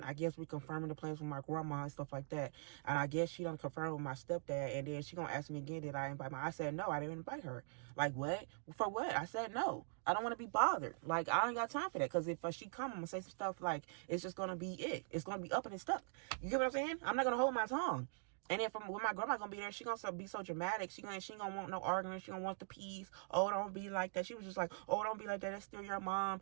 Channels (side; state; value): left; silent; digital silence